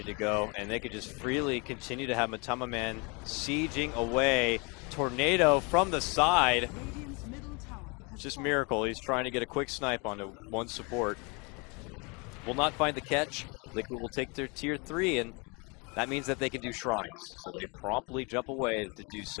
to go, and they could just freely continue to have Matumba Man sieging away. Tornado from the side. Just Miracle. He's trying to get a quick snipe onto one support. Will not find the catch. Liquid will take their tier 3, and that means that they can do shrines. So they promptly jump away to do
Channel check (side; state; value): right; quieter; 30.5 dB